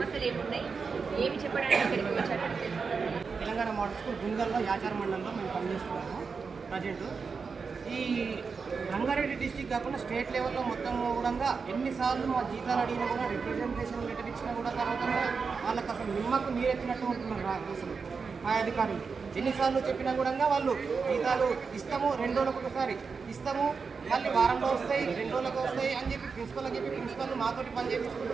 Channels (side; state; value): left; quieter; 5.2 dB